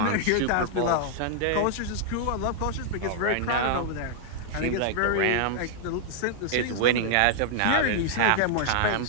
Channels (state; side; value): different; both; correlation -0.01